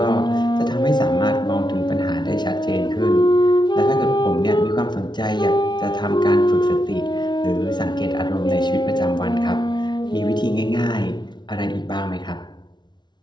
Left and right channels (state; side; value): late; right; 0.21 ms